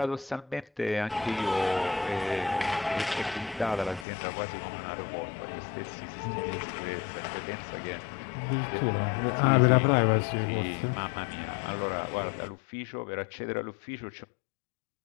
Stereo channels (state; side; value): drops out; right; at 4.0 s